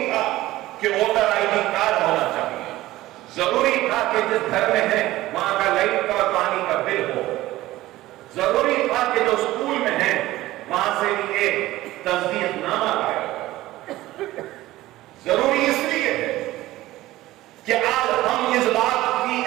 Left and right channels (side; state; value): left; quieter; 16.6 dB